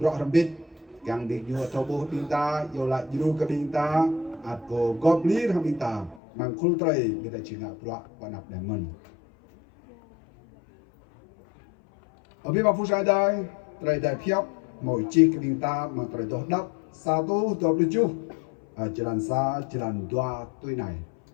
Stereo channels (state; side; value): drops out; right; at 6.2 s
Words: rõ ràng biết càng bị nhua thâu bố bình ta yêu lại yêu cái bình ta ạt cổ góp lý ra bình ta mang khul tray bị ta chỉ ngạp rõ và nạp để mình ở bên bang phu sai đây tray đại phiếp mỗi chi cái bình ta mà tray đốt đắp sa tu đốt được chú jalan sa jalan dua tuổi này